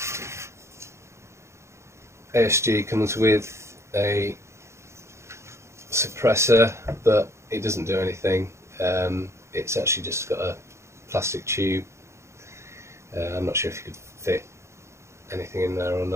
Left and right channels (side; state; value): left; late; 0.13 ms